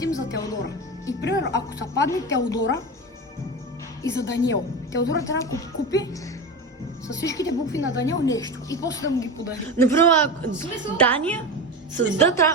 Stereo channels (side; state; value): both; normal; correlation 0.24